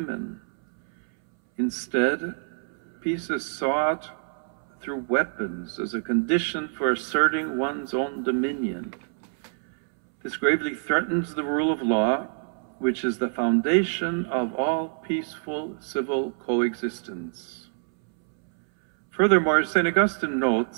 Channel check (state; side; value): silent; left; 61 dB below the other